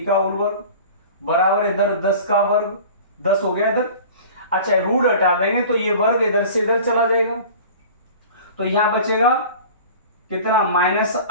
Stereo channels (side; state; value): both; inverted; correlation -0.41